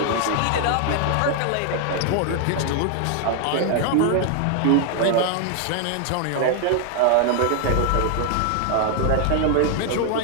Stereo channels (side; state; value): both; different; correlation 0.00